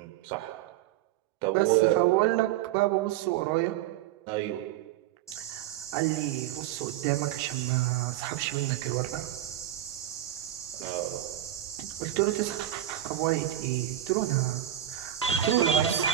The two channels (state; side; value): quieter; left; 12.5 dB